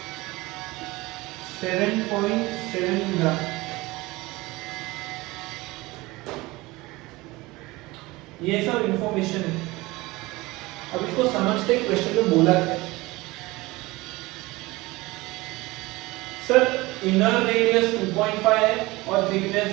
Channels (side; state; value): left; quieter; 21.2 dB